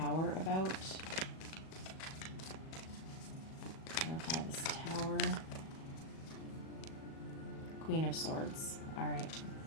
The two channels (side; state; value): right; late; 37 ms